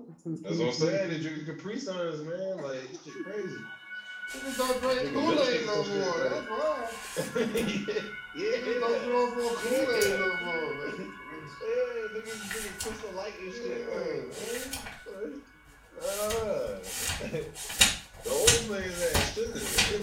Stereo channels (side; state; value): both; identical; correlation 1.00